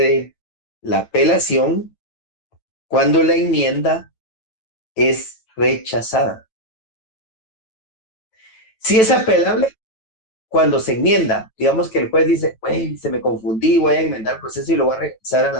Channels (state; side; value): late; right; 9.1 ms